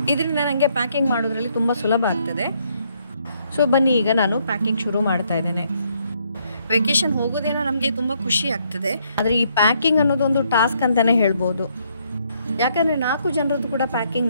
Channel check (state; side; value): inverted; both; correlation -0.72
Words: ಇದರಿಂದ ನನಗೆ ಪ್ಯಾಕಿಂಗ್ ಮಾಡೋದ್ರಲ್ಲಿ ತುಂಬ ಸುಲಭ ಆಗ್ತದೆ. ಸೊ ಬನ್ನಿ, ಈಗ ನಾನು ಪ್ಯಾಕಿಂಗ್ ಶುರು ಮಾಡ್ತಾ ಇದ್ದೇನೆ. ವೆಕೇಷನ್ ಹೋಗೋದೇನೋ ನಮಗೆ ತುಂಬ ಖುಷಿ ಆಗ್ತದೆ, ಆದರೆ ಈ ಪ್ಯಾಕಿಂಗ್ ಅನ್ನೋದು ಒಂದು ಟಾಸ್ಕ್ ಅಂತಲೇ ಹೇಳ್ಬೋದು. ಯಾಕಂದರೆ 4 ಜನರದ್ದು ಕೂಡ ಪ್ಯಾಕಿಂಗ್